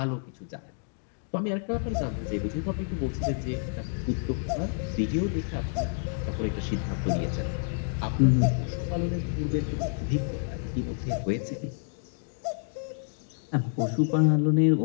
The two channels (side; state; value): right; silent; digital silence